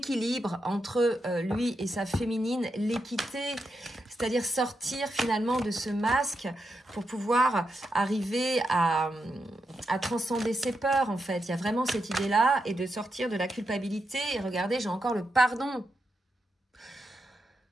entre lui et sa féminine, l'équité, c'est-à-dire sortir finalement de ce masque pour pouvoir arriver à transcender ses peurs en fait. Il y a vraiment cette idée-là et de sortir de la culpabilité. Et regardez, j'ai encore le pardon.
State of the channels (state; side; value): normal; both; correlation 0.85